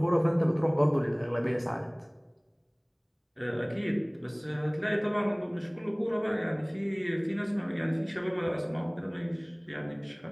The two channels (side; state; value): both; identical; correlation 1.00